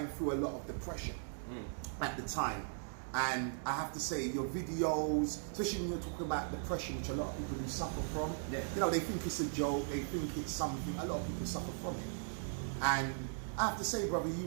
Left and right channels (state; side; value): silent; left; digital silence